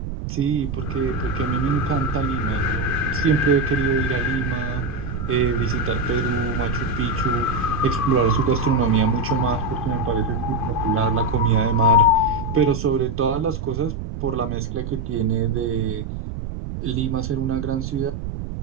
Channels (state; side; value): noise; right; rumble, 6 dB below the sound